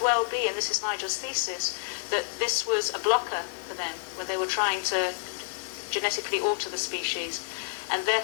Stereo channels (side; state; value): right; silent; digital silence